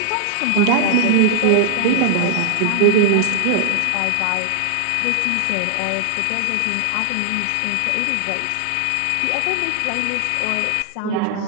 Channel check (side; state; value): both; different; correlation 0.00